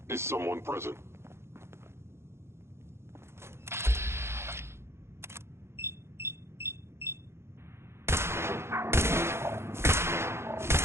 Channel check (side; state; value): left; late; 0.12 ms